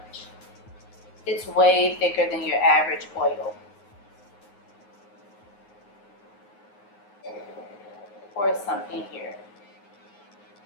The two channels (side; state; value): right; late; 9.6 ms